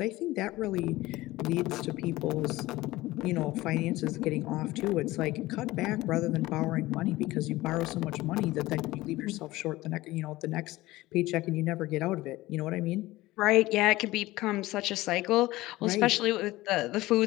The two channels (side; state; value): right; quieter; 18.2 dB